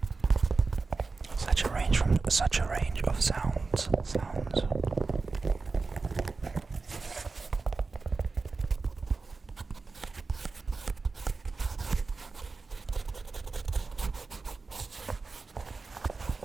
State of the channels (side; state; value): left; quieter; 4.1 dB